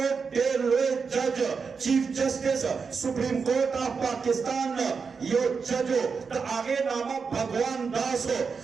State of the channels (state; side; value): quieter; left; 5.4 dB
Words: दे लोए जज chief justice supreme court of Pakistan यो जजो द आगे नामा भगवान दास हो